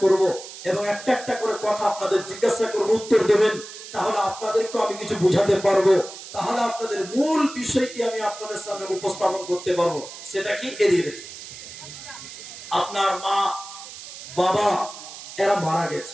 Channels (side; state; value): right; noise; hiss, 13 dB below the sound